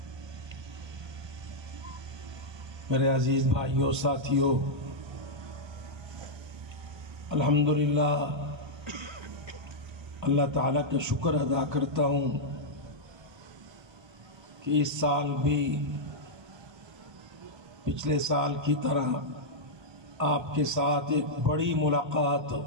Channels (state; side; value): late; left; 1.3 ms